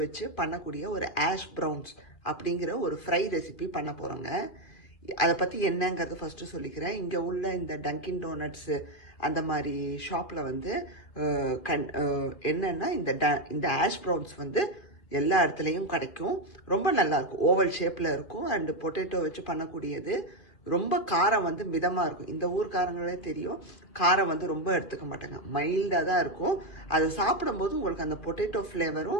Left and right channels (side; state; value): right; late; 2.5 ms